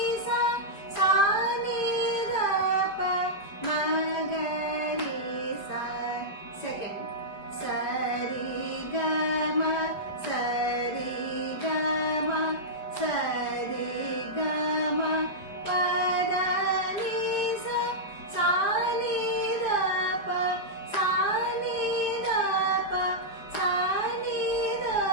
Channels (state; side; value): late; right; 5.3 ms